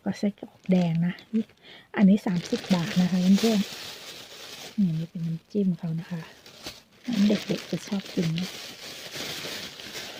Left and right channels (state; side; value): identical; both; correlation 1.00